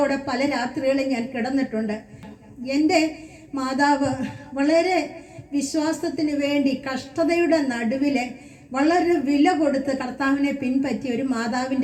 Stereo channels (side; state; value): both; identical; correlation 1.00